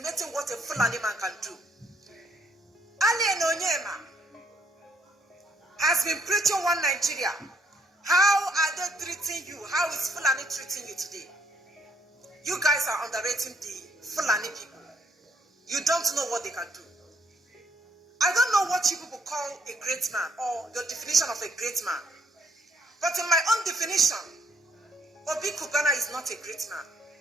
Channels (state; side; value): normal; both; correlation 0.69